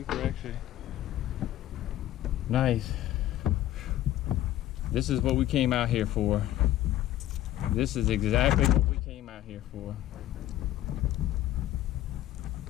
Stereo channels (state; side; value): quieter; right; 13.7 dB